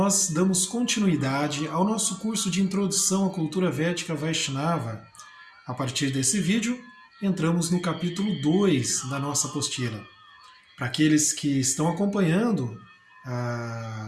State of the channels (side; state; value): both; identical; correlation 1.00